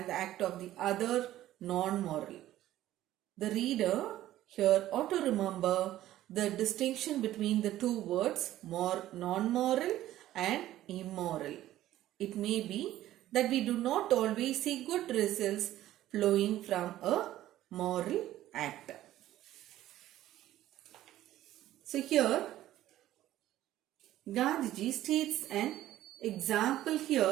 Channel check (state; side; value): quieter; left; 13.9 dB